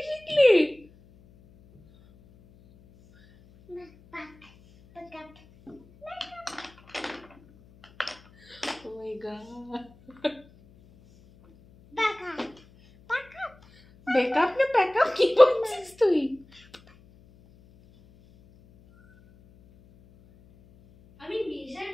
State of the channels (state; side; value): noise; left; hum, 27 dB below the sound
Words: শিখলি? মেকআপ মেকআপ ও মাই গড, মেকআপ মেকআপ মেকআপ না প্যাকআপ কি বলছিস তুই? আমি মেজার